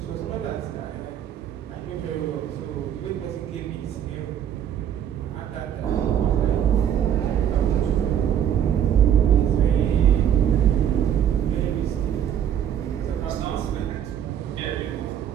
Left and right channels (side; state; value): left; quieter; 9.5 dB